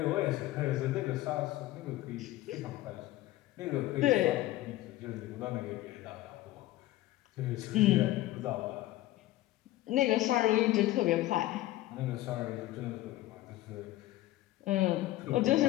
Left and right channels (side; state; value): right; quieter; 16.2 dB